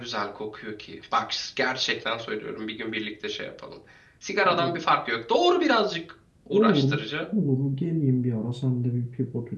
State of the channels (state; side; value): identical; both; correlation 1.00